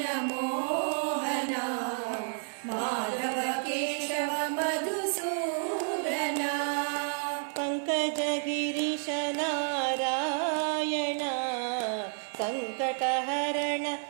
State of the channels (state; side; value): silent; left; 57 dB below the other